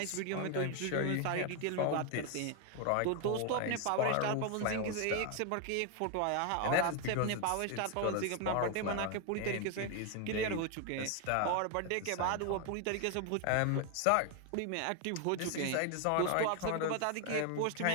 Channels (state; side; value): different; both; correlation 0.01